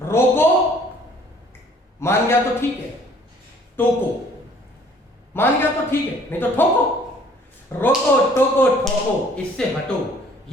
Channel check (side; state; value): both; normal; correlation 0.56